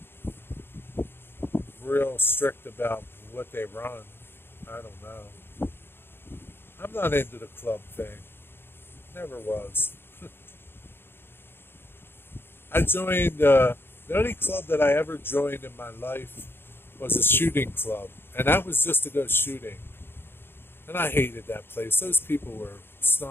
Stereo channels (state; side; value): late; right; 0.11 ms